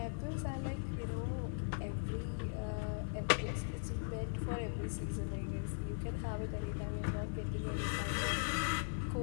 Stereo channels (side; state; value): right; silent; digital silence